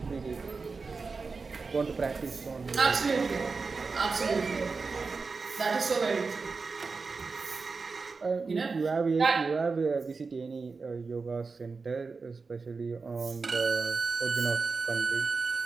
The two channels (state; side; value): quieter; left; 4.4 dB